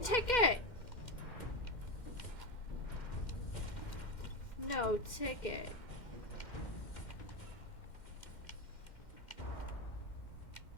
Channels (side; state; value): right; late; 2.1 ms